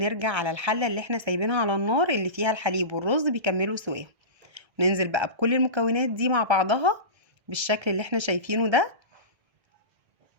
على الحله اللي احنا سايبينها على النار اللي فيها الحليب والرز بيكملوا سواها. ننزل بقى بكل المكونات دي مع بعضها بالشكل اللي احنا شايفينه ده،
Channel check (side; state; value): left; late; 1.3 ms